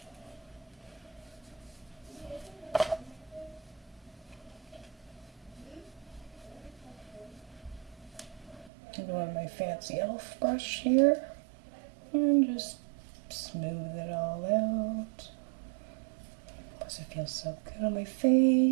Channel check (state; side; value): drops out; left; at 8.7 s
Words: I'm going with my fancy elf brush here and just smooth it all out. Plus it feels so good on my